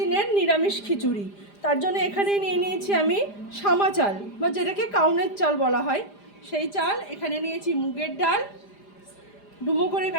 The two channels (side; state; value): right; late; 4.9 ms